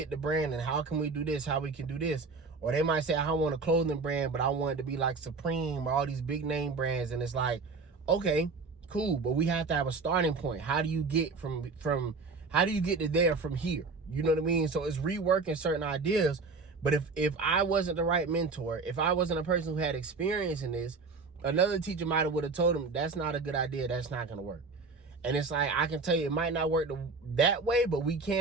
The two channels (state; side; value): quieter; left; 4.2 dB